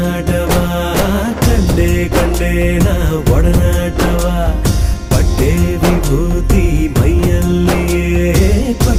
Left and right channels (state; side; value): identical; both; correlation 1.00